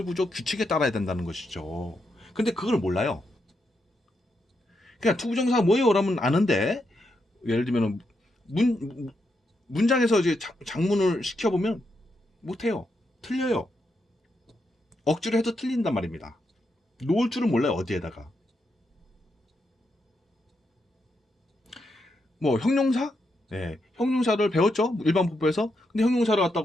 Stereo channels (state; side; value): normal; both; correlation 0.82